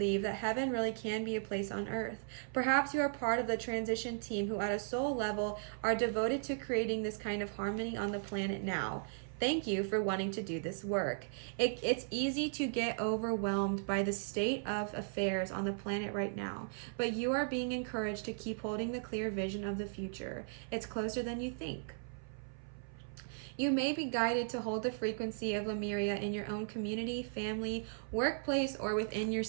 that heaven really can be a place on earth. Perhaps you are part of the transition team who at a soul level are devoted to creating this kind of harmony on the planet now. Thank you for wanting to do this work. It's easy to get overwhelmed by the state of affairs on the planet right now, but you are being encouraged to keep holding the clear vision of the future. It's closer than you think. You may be guided to hold the frequency of Lemuria in your own community, family, workplace, or within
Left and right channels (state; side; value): silent; left; 53 dB below the other